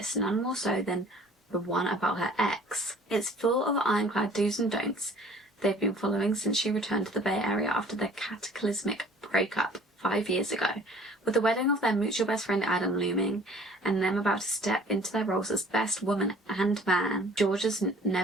none more so than the one about her ex. It's full of ironclad do's and don'ts they've been following since she returned to the Bay Area after their cataclysmic breakup 5 years ago. With the wedding of their mutual best friend Adam looming, and them about to step into their roles as best woman and man, Georgia's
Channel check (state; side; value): normal; both; correlation 0.52